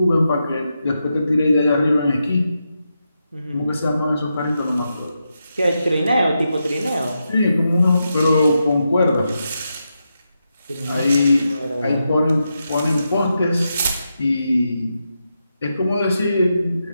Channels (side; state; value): both; inverted; correlation -0.86